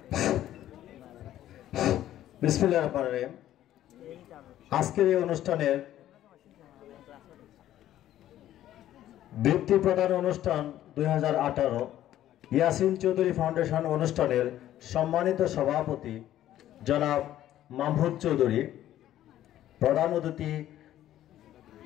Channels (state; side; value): quieter; right; 12.7 dB